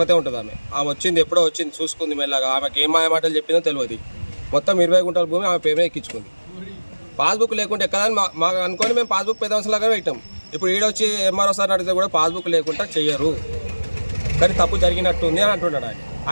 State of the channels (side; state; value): both; inverted; correlation -1.00